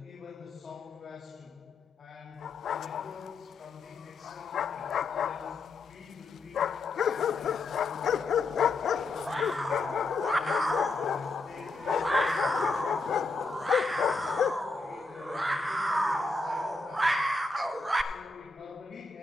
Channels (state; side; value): quieter; right; 3.6 dB